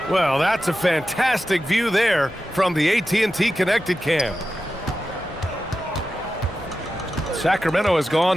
Well, that's a fantastic view there from the AT&T Connected Cam. Sacramento has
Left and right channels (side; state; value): both; normal; correlation 0.92